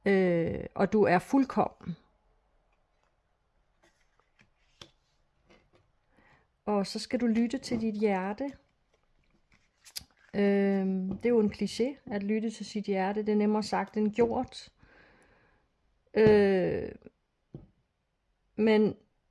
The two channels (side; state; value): both; identical; correlation 1.00